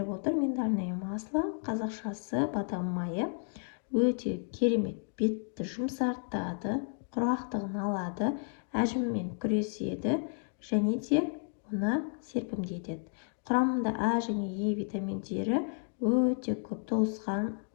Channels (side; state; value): right; silent; 56 dB below the other